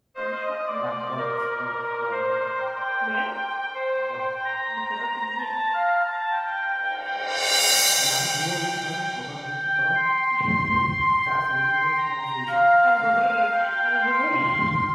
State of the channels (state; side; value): identical; both; correlation 1.00